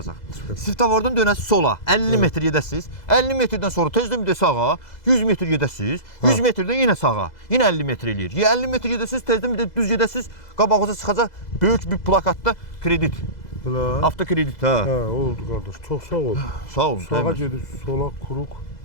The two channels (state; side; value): late; right; 2.0 ms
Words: Svetofordan dönəsiz sola, 50 metr gedəsiz. 50 metrdən sonra tezdən bir də sağa, 100 metr gedəsiz. 100 metrdən yenə sağa, yenə 50 metr eləyir. 50 metr gedəsiz, tezdən bir də düz gedəsiz, qabağınıza çıxacaq böyük bir plakatda kredit. Avtokredit, hə. Hə, oldu qardaş. Çox sağ ol. Sağ olun. Sağa gedib, sola kuruq.